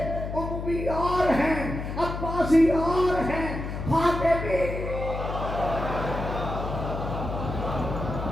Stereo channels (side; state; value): left; noise; hum, 6 dB below the sound